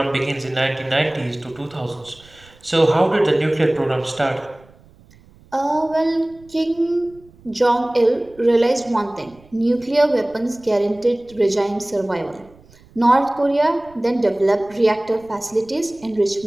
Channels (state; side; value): noise; right; rumble, 27 dB below the sound